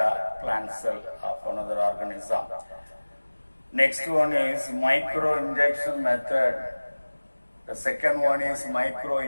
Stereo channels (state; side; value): inverted; both; correlation -1.00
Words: plant cell of another organism. Next one is microinjection method. The second one is